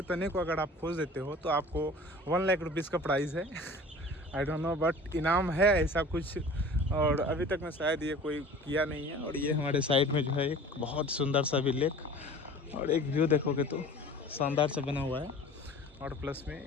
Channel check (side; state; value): both; normal; correlation 0.43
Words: तने को अगर आप खोज देते हो तो आपको 1 लाख रुपीज़ का प्राइज़ है। आई डोंट नो बट इनाम है ऐसा कुछ, और अभी तक मैं शायद ये कोई किया नहीं है। और ये हमारे साइड में जो है एक बहुत सुंदर सा भी लेक और एक व्यू देखोगे तो शानदार से बना हुआ है। और प्लस में